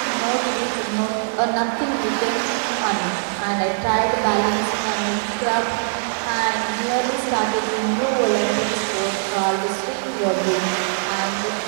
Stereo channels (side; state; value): left; silent; 64 dB below the other